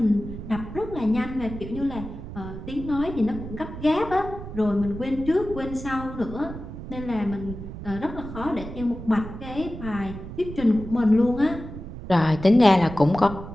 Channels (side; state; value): right; noise; rumble, 11 dB below the sound